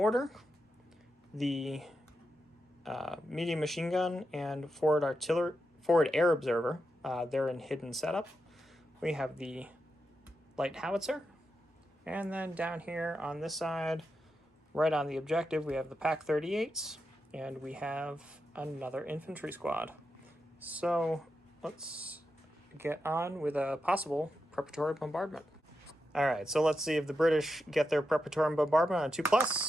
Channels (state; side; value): normal; both; correlation 0.87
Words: the medium machine gun, and forward air observer. They're in hidden setup. We have the light howitzer, and then down here on this side, right on the objective, we have the PAC 38s, and we have another infantry squad. So let's get on with a possible preparatory bombardment. All right, so let's see if the British get their preparatory bombardment on